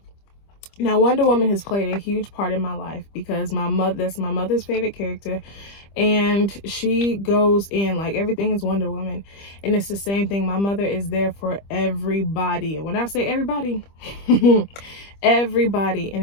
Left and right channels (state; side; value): late; right; 25 ms